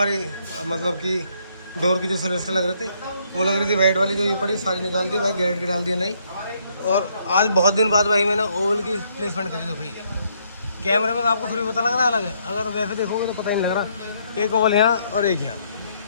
मतलब कि डोर की जो सेलेस्टर लग रहे थे, वो लग रही थी वाइट वाली, जो ये पड़ी सारी निकाल दी भाई, गैरेट की डाल दिया नहीं। और आज बहुत दिन बाद भाई मैंने ओवल की प्लेसमेंट करी। तो भाई कैमरे में तो आपको थोड़ी पता लग रहा है अलग है, अगर वैसे देखोगे तो पता ही नहीं लग रहा। एक ओवल यहाँ और एक यहाँ,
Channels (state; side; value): inverted; both; correlation -0.71